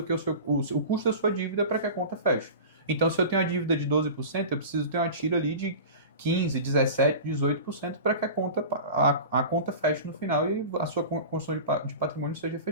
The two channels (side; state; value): both; inverted; correlation -0.34